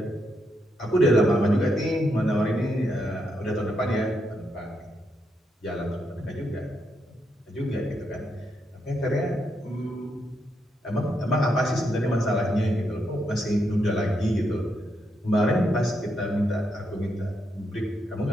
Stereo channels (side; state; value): both; normal; correlation 0.80